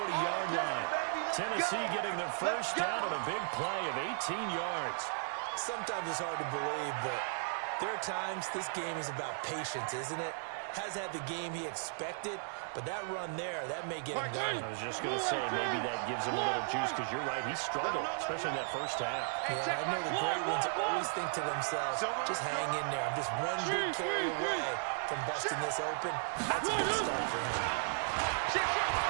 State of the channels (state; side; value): silent; left; digital silence